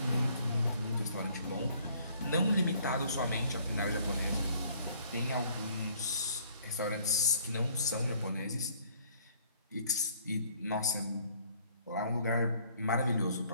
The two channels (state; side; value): inverted; both; correlation -0.59